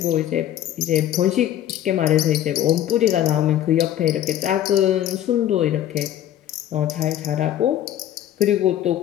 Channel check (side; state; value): right; quieter; 11.6 dB